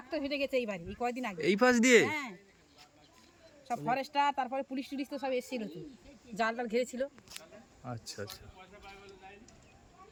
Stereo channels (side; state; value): both; identical; correlation 1.00